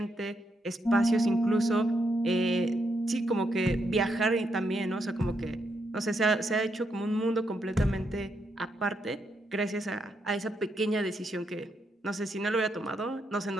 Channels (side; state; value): both; normal; correlation 0.79